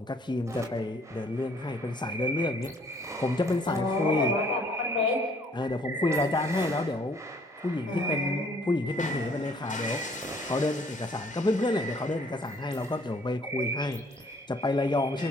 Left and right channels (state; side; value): normal; both; correlation 0.60